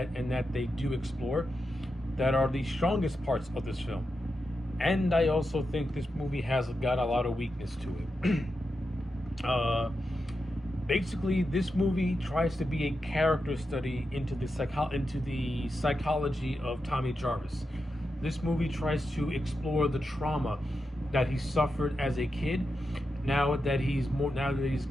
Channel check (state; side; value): normal; both; correlation 0.88